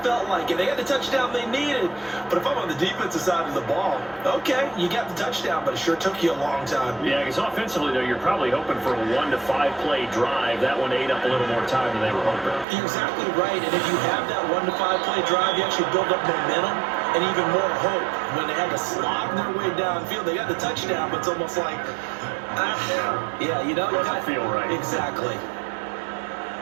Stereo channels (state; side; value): drops out; left; at 12.7 s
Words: felt like it. They got the touchdown they needed. But if I'm on the defensive side of the ball, okay, you got the touchdown, but it sure took you a long time. Yeah, because offensively, though, you're probably hoping for a 1 to 5 play drive. That one ate up a little more time than they were hoping. You're exactly right. And if you have that 1 to 5 play drive, you actually build up momentum and even more hope. When they had to slog their way downfield, they got the touchdown, but it's almost like, yeah, you know. Doesn't feel right. Exactly.